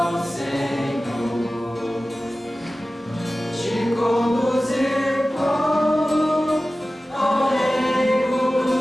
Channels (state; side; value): normal; both; correlation 0.96